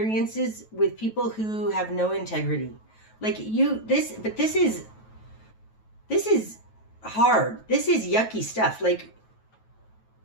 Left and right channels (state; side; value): late; right; 9.2 ms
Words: with people who have no integrity. Like this is hard. This is yucky stuff. Like